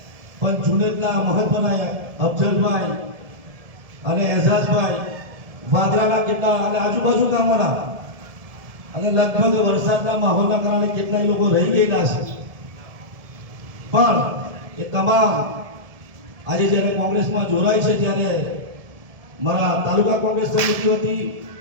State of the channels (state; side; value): late; left; 1.7 ms